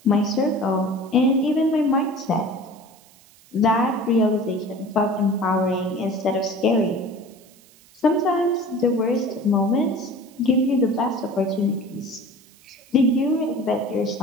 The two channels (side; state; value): right; noise; hiss, 27 dB below the sound